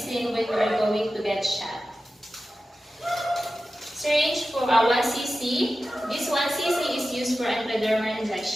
when you are going to get shot. Syringe for 1 cc. This 1 cc is used for intradermal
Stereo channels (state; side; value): normal; both; correlation 0.93